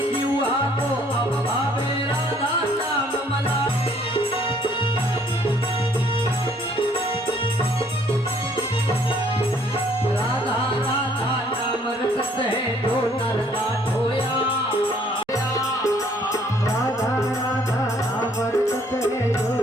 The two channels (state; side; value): normal; both; correlation 0.62